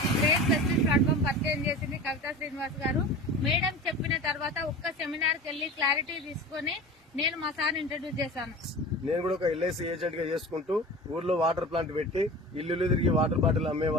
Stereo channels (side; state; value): both; normal; correlation 0.35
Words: గ్రేట్ వెస్టేజ్ ప్లాట్ఫామ్ పరిచయం చేసింది కవితా శ్రీనివాస్ గారు. మేడం చెప్పిన తర్వాత ఒక్క సెమినార్ కి వెళ్లి క్లారిటీ తీసుకుని నేను మా సార్ ఇంట్రడ్యూస్ చేశాను. నేను కూడా ఒక ఎల్ఐసి ఏజెంట్ గా చేసుకుంటూ ఊర్లో వాటర్ ప్లాంట్ పెట్టి ఇల్లు తిరిగి వాటర్ బాటిల్